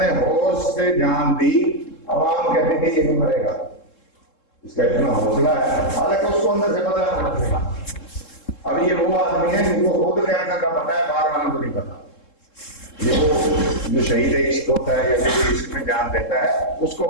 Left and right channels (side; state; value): right; late; 3.7 ms